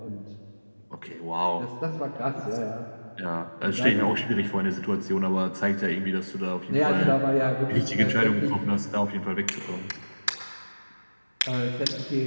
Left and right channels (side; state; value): both; inverted; correlation -1.00